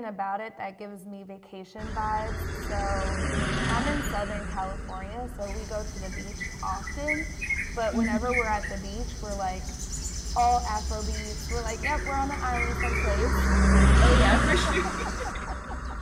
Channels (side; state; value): both; identical; correlation 1.00